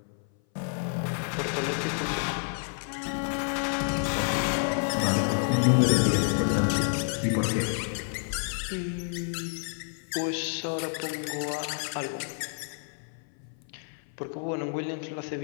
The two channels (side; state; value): right; silent; 57 dB below the other